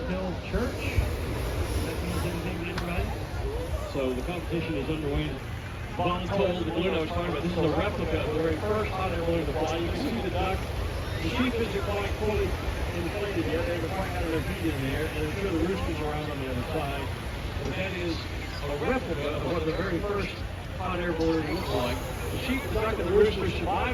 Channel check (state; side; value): identical; both; correlation 1.00